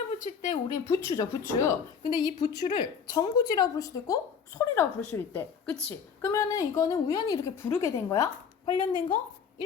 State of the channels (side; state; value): right; quieter; 6.8 dB